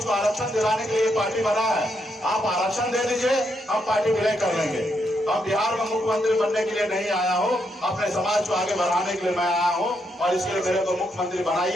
को आरक्षण दिलाने के लिए पार्टी बना है। आप आरक्षण दे दीजिए, हम पार्टी विलय कर लेंगे। अब बिहार में मुख्यमंत्री बनने के लिए नहीं आया हूँ, अपने समाज को आगे बढ़ाने के लिए मैं आया हूँ और इसके लिए मेरे को मुख्यमंत्री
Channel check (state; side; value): normal; both; correlation 0.79